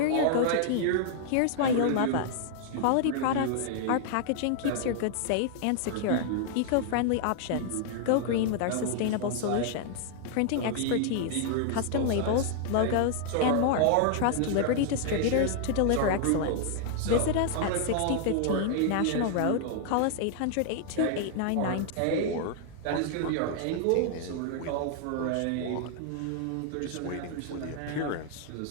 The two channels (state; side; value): different; both; correlation 0.00